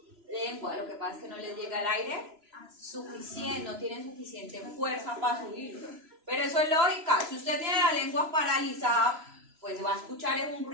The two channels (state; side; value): late; left; 3.0 ms